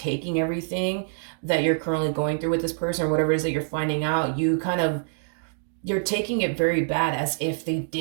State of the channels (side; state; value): left; silent; digital silence